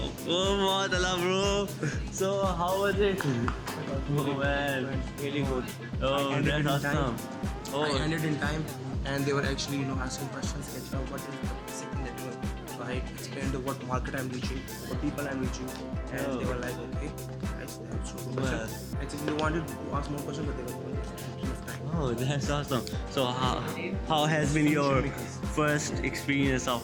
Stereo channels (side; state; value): both; identical; correlation 1.00